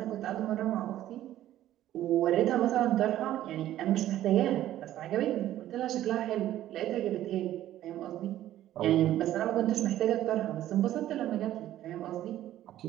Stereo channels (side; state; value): left; quieter; 13.1 dB